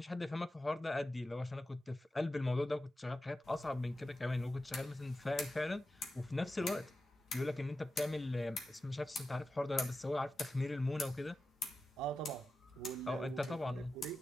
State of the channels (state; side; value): normal; both; correlation 0.92